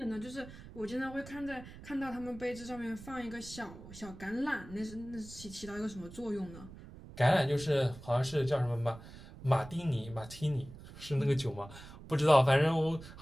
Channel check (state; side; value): noise; right; rumble, 16 dB below the sound